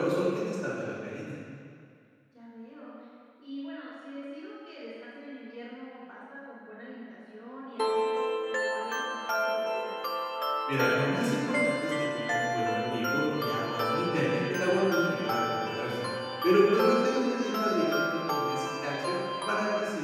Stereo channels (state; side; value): identical; both; correlation 1.00